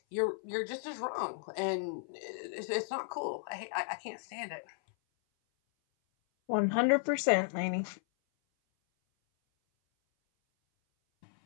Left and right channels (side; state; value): right; silent; 55 dB below the other